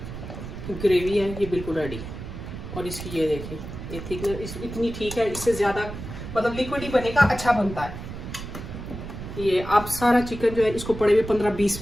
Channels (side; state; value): right; noise; rumble, 9 dB below the sound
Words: ग्रेवी है ये बिल्कुल रेडी है, और इसकी ये देखें, ये थिकनेस इतनी ठीक है, इससे ज़्यादा मतलब लिक्विड ही बनेगा, अच्छा बनता है ये। अब सारा चिकन जो है इसको पड़े हुए 15-20